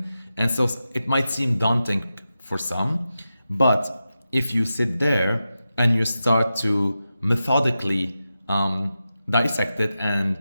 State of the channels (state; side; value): inverted; both; correlation -0.91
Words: so it might seem daunting for some, but if you sit there and you start to methodically dissect it and